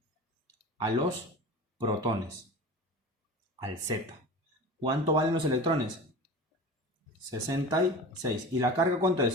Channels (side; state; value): both; normal; correlation 0.33